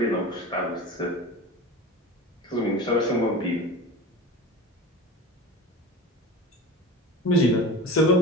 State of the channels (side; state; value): both; normal; correlation 0.32